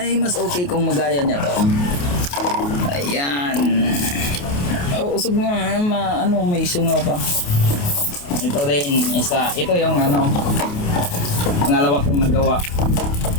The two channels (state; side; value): late; right; 28 ms